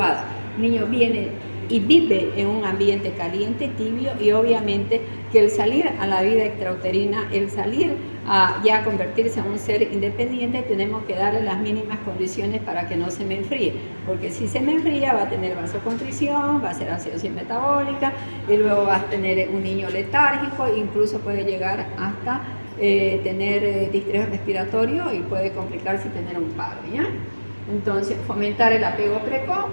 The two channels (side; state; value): both; inverted; correlation -1.00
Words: El niño viene y vive en un ambiente caliente, tibio, y obviamente que el salir a la vida extrauterina, el salir a ya convertirse en un ser independiente, tenemos que darle las mínimas condiciones para que no se me enfríe, porque si se me enfría va a tener vasoconstricción, va a ser acidosis metabólica, y luego va a tener un niño letárgico, incluso puede llegar hasta tener distrés respiratorio y puede complicarse y tener un paro, ¿ya? Entonces, fomentar el apego precoz,